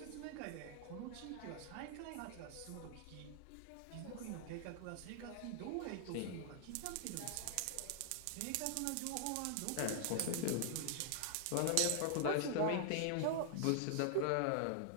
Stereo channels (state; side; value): different; both; correlation -0.01